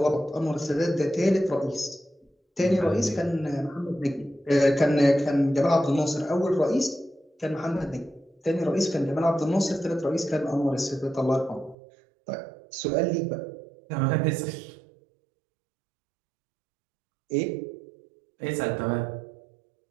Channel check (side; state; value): left; drops out; at 11.8 s